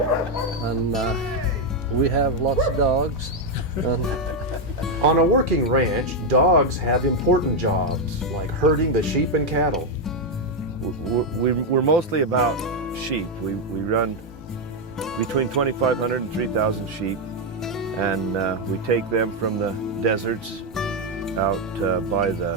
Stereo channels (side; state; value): both; normal; correlation 0.03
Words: And we have lots of dogs. On a working ranch, dogs have important jobs, like herding the sheep and cattle. We're mostly about sheep. We run between 2,500 and 3,000 sheep, and we take them from the deserts out by